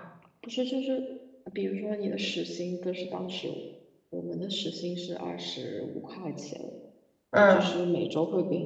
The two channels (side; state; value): both; identical; correlation 1.00